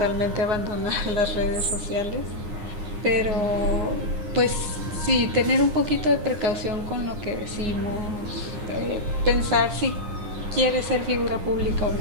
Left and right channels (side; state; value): left; late; 9.7 ms